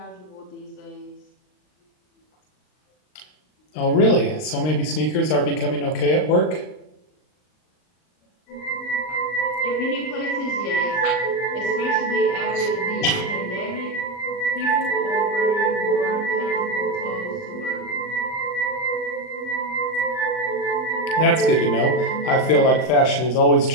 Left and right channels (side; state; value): right; late; 39 ms